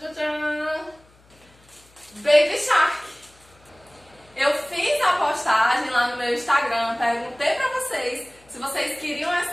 Baby Shark. Eu fiz a postagem lá no meu Instagram, perguntei para vocês se vocês queriam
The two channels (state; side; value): noise; left; hum, 30 dB below the sound